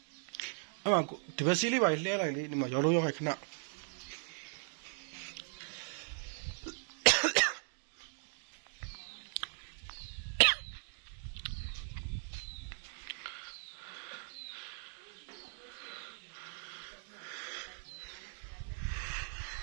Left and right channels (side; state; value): left; silent; 52 dB below the other